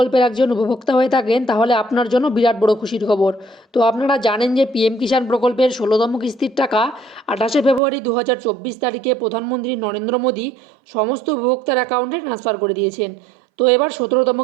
একজন উপভোক্তা হয়ে থাকেন তাহলে আপনার জন্য বিরাট বড় খুশির খবর। তো আপনারা জানেন যে পিএম কিষাণ প্রকল্পের ১৬তম কিস্তির টাকা ২৮শে ফেব্রুয়ারি ২০২৪ তারিখে প্রধানমন্ত্রী নরেন্দ্র মোদী সমস্ত উপভোক্তার অ্যাকাউন্টে ট্রান্সফার করে দিয়েছেন। তো এবার ১৭তম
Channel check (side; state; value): left; drops out; at 7.8 s